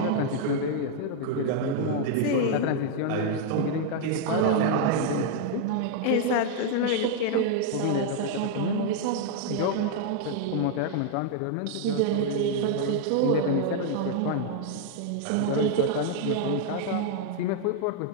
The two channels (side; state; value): both; different; correlation 0.00